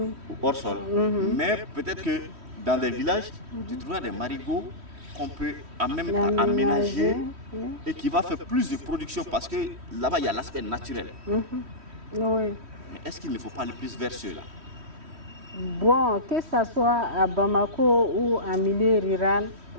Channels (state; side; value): late; left; 3.1 ms